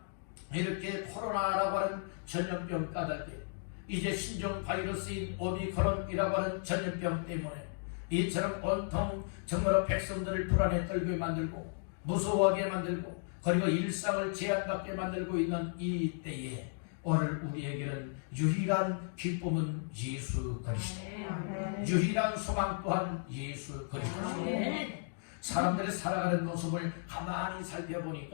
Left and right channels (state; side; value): silent; right; digital silence